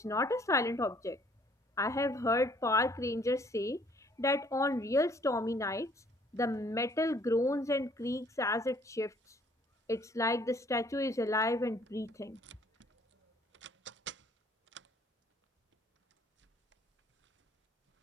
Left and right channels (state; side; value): normal; both; correlation 0.60